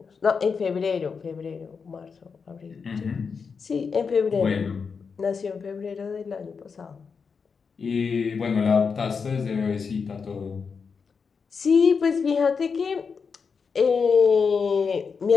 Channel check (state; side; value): quieter; right; 5.6 dB